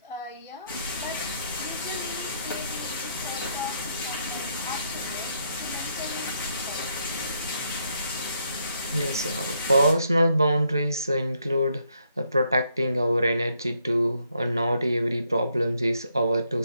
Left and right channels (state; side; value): inverted; both; correlation -0.75